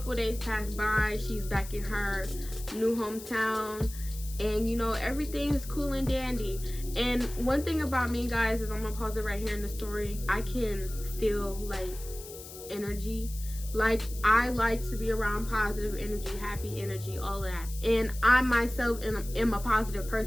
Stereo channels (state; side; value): noise; left; hiss, 14 dB below the sound